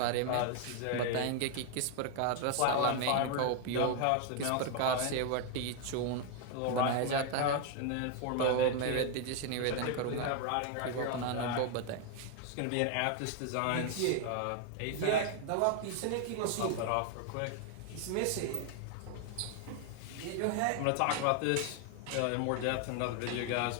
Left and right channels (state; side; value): different; both; correlation 0.00